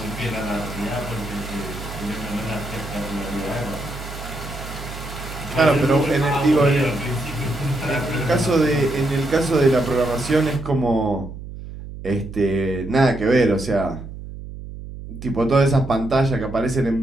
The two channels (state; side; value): noise; right; hum, 11 dB below the sound